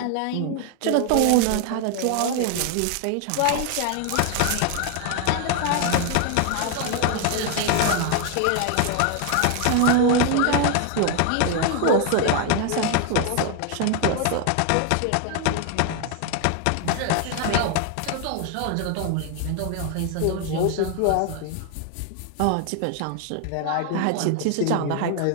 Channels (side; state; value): both; different; correlation 0.01